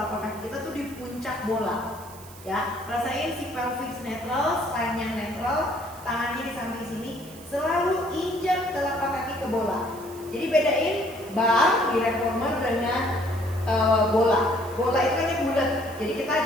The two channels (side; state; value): right; noise; hiss, 19 dB below the sound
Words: kaki kita tuh di puncak bola ya. Rasain si pelvis netral, spine yang netral, tangannya di samping sini. Selalu injak telapak kaki ke bola. Jadi bedain bar di reformer dengan bola. Bola itu kan bulat, jadi kita